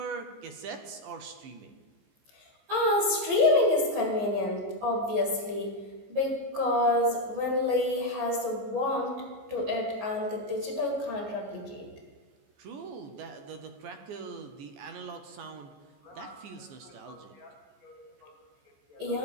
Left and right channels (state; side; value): late; left; 14 ms